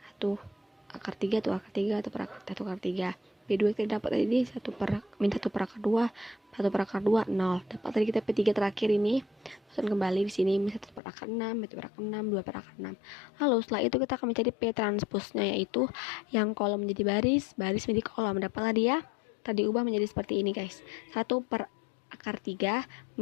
1 akar 3, 1 akar 3, 1 per akar 3. P2 kita dapat tadi min 1 per akar 2, 1 per akar 2, 0. Dapat tadi kita P3 terakhir ini, masuk kembali di sini min 1 per akar 6, 1 per akar 6, 2 per akar 6. Lalu setelah itu kita akan mencari P transposnya, yaitu yang kolom menjadi baris menjadi kolom. Dapatlah dia tadi ubah menjadi seperti ini guys. 1 per akar 3,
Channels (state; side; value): drops out; right; at 11.0 s